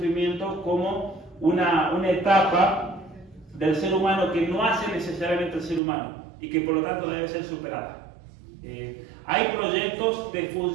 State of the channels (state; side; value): drops out; left; at 5.8 s